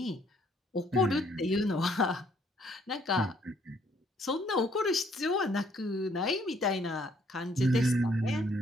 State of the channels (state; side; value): normal; both; correlation 0.66